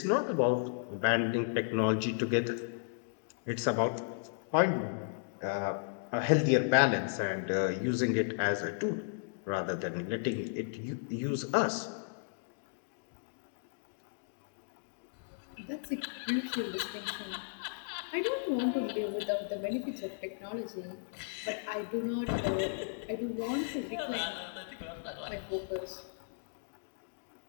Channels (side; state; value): right; silent; digital silence